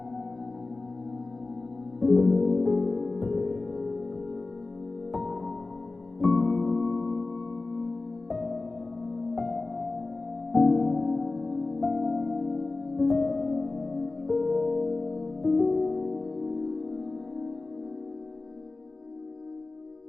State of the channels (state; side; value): quieter; right; 3.4 dB